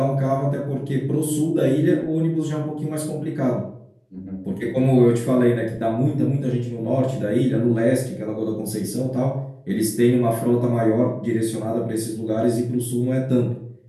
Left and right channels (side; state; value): both; identical; correlation 1.00